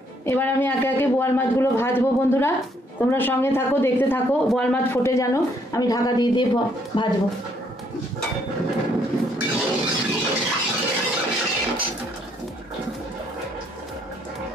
এবার আমি একে একে বোয়াল মাছগুলো ভাজবো বন্ধুরা, তোমরা সঙ্গে থাকো, দেখতে থাকো। বোয়াল মাছ ফোটে যেন আমি ঢাকা দিয়ে দিয়ে ভাজবো।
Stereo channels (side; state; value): both; normal; correlation 0.68